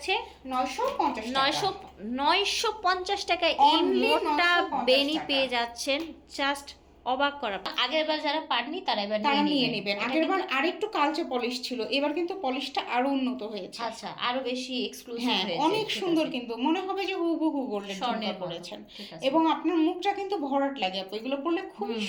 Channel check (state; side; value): identical; both; correlation 1.00